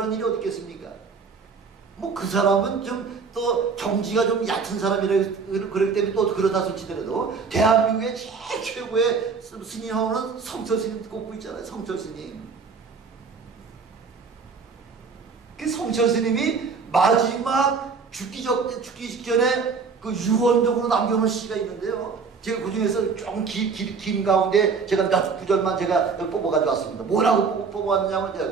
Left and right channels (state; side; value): quieter; left; 5.2 dB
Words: 일이 어디 있겠습니까? 뭐 그 사람은 좀 또 경지가 좀 얕은 사람이라 그렇기 때문에 또 그러다 솔치더라도 대한민국의 제일 최고의 스님하고는 성철스님 꼽고 있잖아요. 성철스님. 그 성철스님이 마지막 죽기 직전에 그 유언적으로 남겨놓은 시가 있는데요. 제가 그 중에서 좀 긴 가운데 제가 몇 구절만 제가 뽑아가지고 왔습니다. 뭐라고